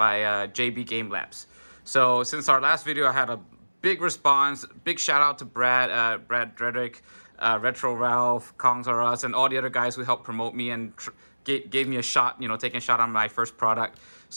JB Game Labs. So since our last video, I had a big response. Big shout out to Brad Dredrick, Retro Ralph, Kongs R Us, and all the other guys who helped promote me and gave me a shot, taking a shot on my first product.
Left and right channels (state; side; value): inverted; both; correlation -1.00